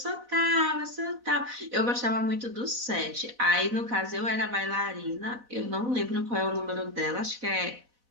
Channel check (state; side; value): late; left; 4.0 ms